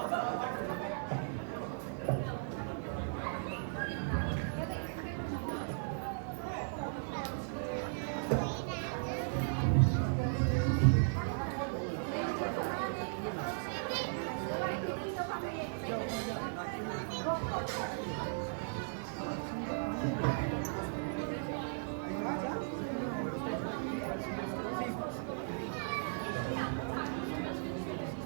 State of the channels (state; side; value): silent; left; 53 dB below the other